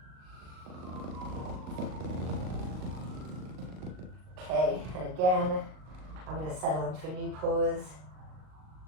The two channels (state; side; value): late; left; 38 ms